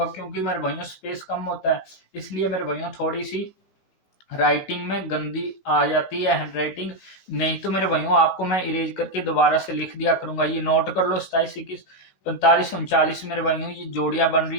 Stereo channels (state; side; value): late; right; 15 ms